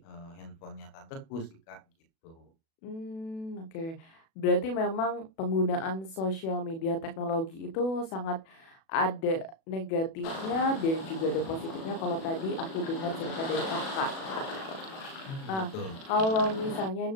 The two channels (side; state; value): right; late; 37 ms